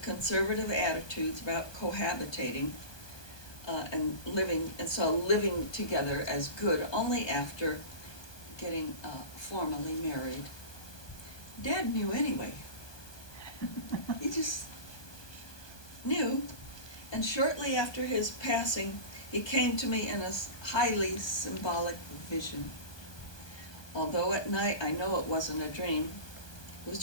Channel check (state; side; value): late; right; 1.2 ms